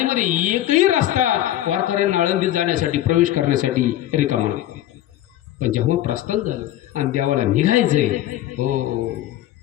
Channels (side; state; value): right; quieter; 13.5 dB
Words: एकही रस्ता वारकऱ्यांना आळंदीत जाण्यासाठी प्रवेश करण्यासाठी रिकामा नाही. पण जेव्हा प्रस्थान झालं आणि देवाला निघायचंय हो